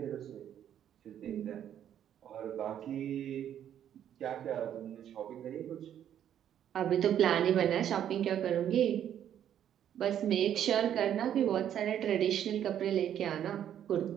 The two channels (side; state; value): left; quieter; 10.1 dB